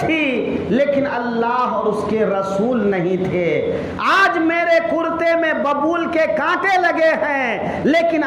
لیکن اللہ اور اس کے رسول نہیں تھے، آج میرے کرتے میں ببول کے کانٹے لگے ہیں لیکن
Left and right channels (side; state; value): both; identical; correlation 1.00